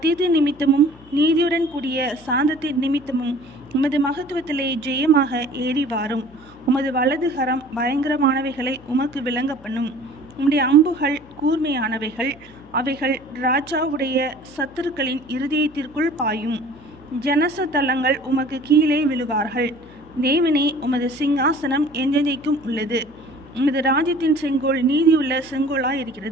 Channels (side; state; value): left; noise; hum, 24 dB below the sound